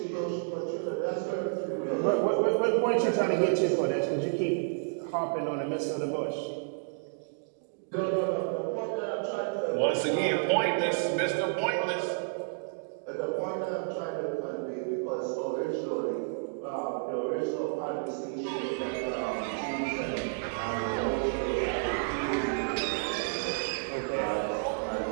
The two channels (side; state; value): left; silent; digital silence